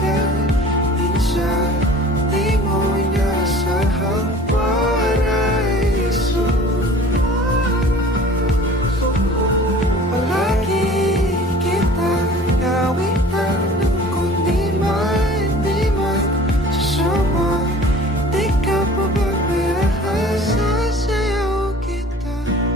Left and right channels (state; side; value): normal; both; correlation 0.46